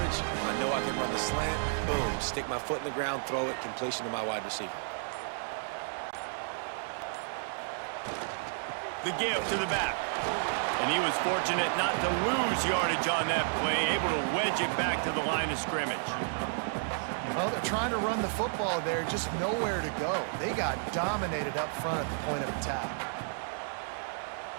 I know I can run the slant. Boom, stick my foot in the ground, throw it, completion to my wide receiver. The give to the back. And he was fortunate not to lose yardage on that play, able to wedge it back to the line of scrimmage. Well, they're trying to run the football there, just nowhere to go. They got dominated up front at the point of attack.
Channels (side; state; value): left; silent; digital silence